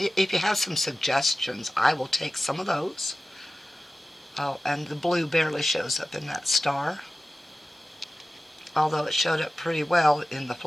you have some suggestions, I will take some of those. Oh, and the blue barely shows up in that star, although it showed up pretty well in the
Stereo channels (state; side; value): normal; both; correlation 0.95